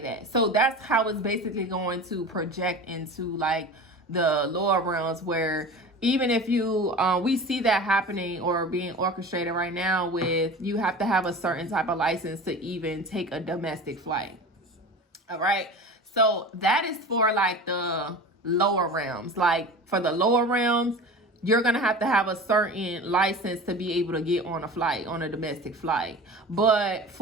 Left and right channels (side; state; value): both; normal; correlation 0.34